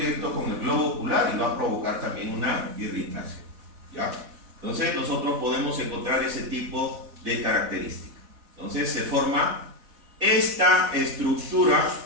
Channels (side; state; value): left; late; 4.1 ms